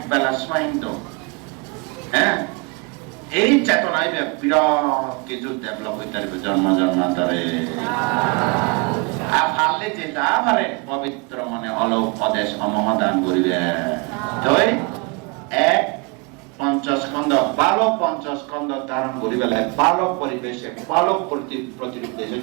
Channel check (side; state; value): left; quieter; 30.6 dB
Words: বেলা স্মাইন দো হ্যাঁ এই চেতনায় বিরাট কিছু ডেভেলপ হইতে পারবে জন্ম জন্মান্তরে আর পারলে যেটা পারে পবিত্র মনে অলোক অদেশ অমদান করিবে তাই এক পঞ্চস্কন্ধ বালক পঞ্চস্কন্ধ ধারণ করি বেলা বালক পরিবেশে বালক প্রতিরূপ দেশে